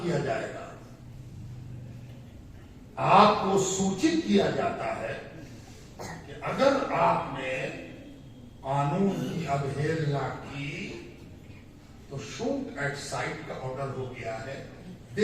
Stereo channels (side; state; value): both; identical; correlation 1.00